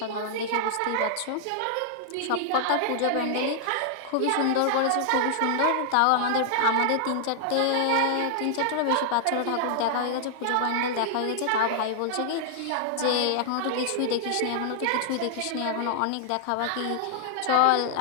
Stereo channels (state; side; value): different; both; correlation -0.01